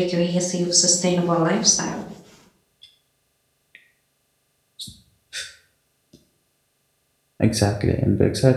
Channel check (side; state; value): both; identical; correlation 1.00